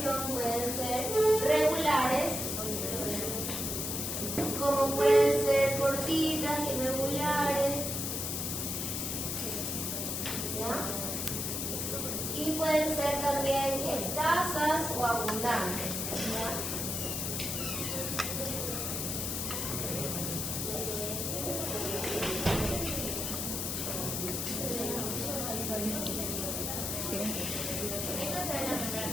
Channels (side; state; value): left; noise; hiss, 2 dB below the sound